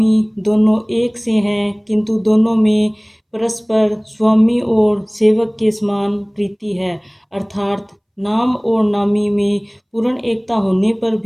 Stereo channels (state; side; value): identical; both; correlation 1.00